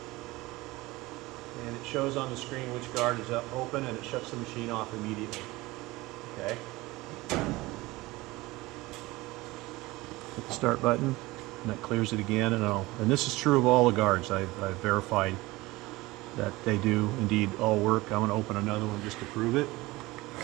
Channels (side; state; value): left; quieter; 20.5 dB